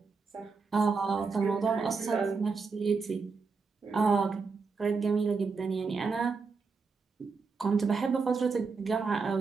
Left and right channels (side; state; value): left; quieter; 4.7 dB